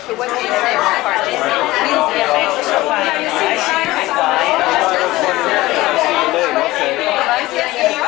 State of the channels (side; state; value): right; quieter; 18.5 dB